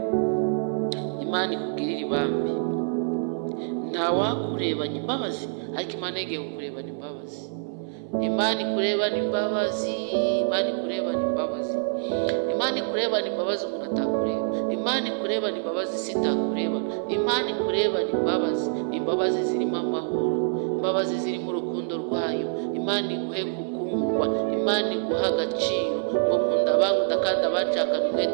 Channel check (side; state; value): left; silent; 61 dB below the other